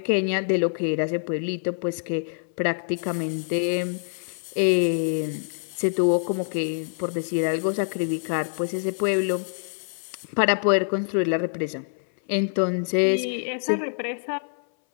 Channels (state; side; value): silent; right; 60 dB below the other